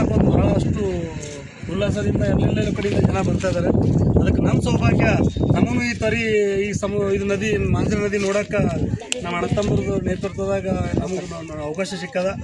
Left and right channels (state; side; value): identical; both; correlation 1.00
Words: ಒಂದು ಭಾಳಷ್ಟು ಉಲ್ಲಾಸದಿಂದ ಎಲ್ಲೆಲ್ಲ ಕಡೆಯಿಂದ ಜನ ಬರ್ತಾ ಇದ್ದಾರೆ. ಅದಕ್ಕೆ ನಮ್ಮ ಸೌಭಾಗ್ಯ, ನಮಗೂ ಈ ನದಿ ಮಾಂಜನ ನದಿ ನೋಡೋಕೆ ನಮ್ಮ ಅಣ್ಣತಮ್ಮರದು ನೇತೃತ್ವದಾಗ ನಮಗೆ ಅವಕಾಶ ಸಿಕ್ಕದ.